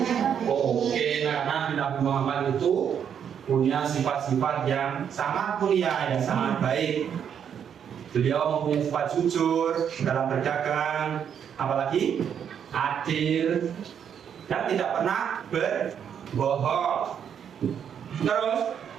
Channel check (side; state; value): left; quieter; 8.3 dB